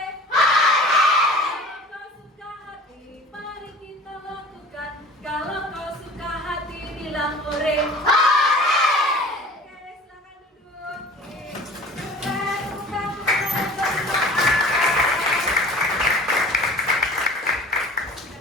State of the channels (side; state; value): both; normal; correlation 0.43